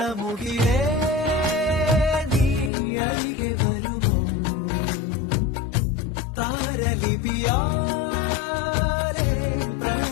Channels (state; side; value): drops out; right; at 2.7 s